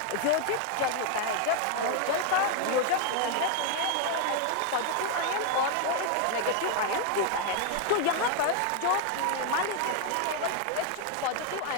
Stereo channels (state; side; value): different; both; correlation 0.01